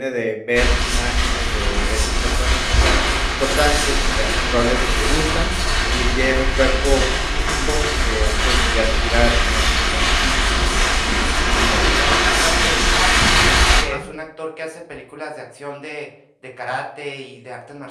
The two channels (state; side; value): identical; both; correlation 1.00